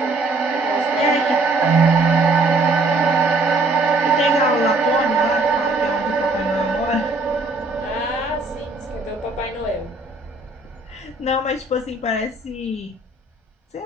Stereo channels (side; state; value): left; quieter; 3.2 dB